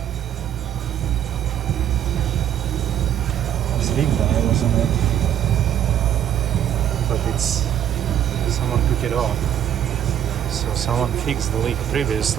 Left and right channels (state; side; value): quieter; left; 10.3 dB